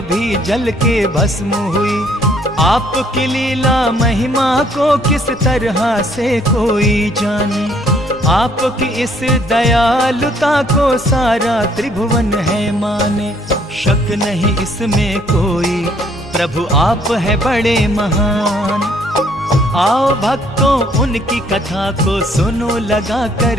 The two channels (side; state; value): both; normal; correlation 0.64